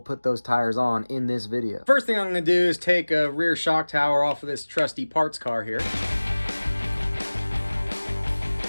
those tires on in this video. First thing I'm going to do is take a rear shock tower off of this trusty parts car here.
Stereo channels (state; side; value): inverted; both; correlation -1.00